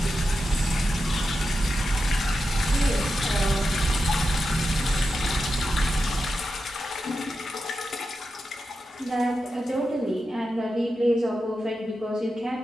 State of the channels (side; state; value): both; normal; correlation 0.89